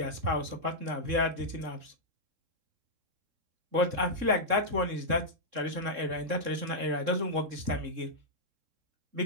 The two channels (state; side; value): late; left; 3.7 ms